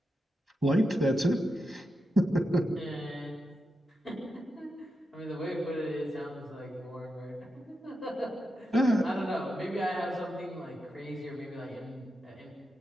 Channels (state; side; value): normal; both; correlation 0.87